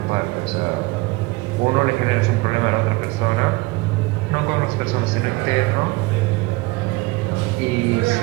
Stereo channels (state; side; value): quieter; left; 23.2 dB